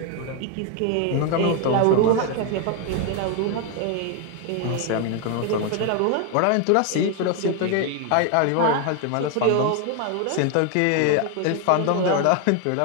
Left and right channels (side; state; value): both; different; correlation 0.01